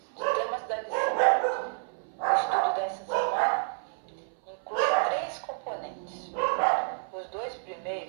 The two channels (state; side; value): silent; left; 58 dB below the other